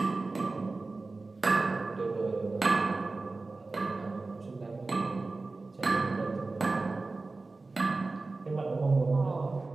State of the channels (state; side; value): quieter; left; 3.6 dB